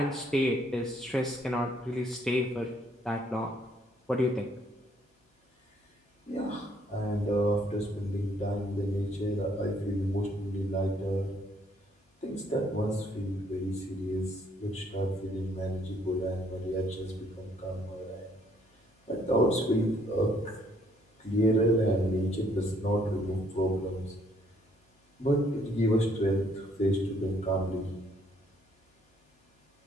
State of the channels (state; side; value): normal; both; correlation 0.66